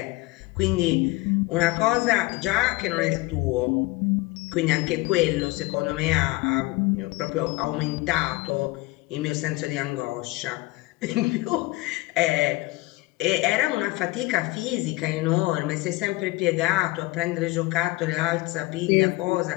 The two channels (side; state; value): right; quieter; 21.2 dB